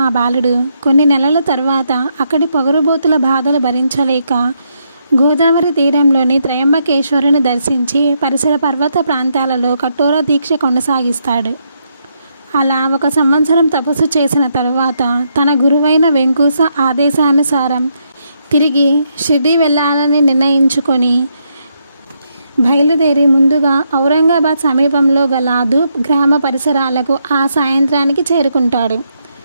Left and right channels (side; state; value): both; inverted; correlation -0.78